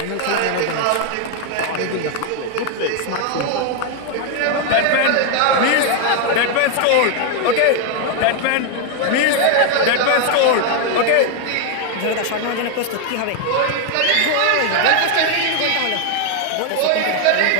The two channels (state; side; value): different; both; correlation 0.01